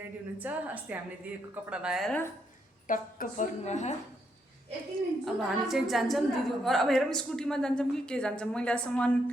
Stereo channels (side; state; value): both; normal; correlation 0.77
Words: हुनुहुन्छ। अस्ति हामीले दिएको कपडा लगाएर टक्क पर्नुभयो। अब हामी चाहिँ जान्छौँ दिदीको घर। अब हेरौँ स्कुटीमा जान्छौँ कि के जान्छौँ। मैले अहिलेसम्म